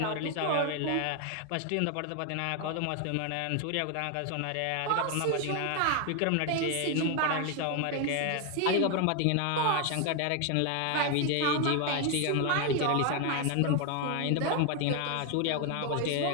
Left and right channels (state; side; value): different; both; correlation 0.01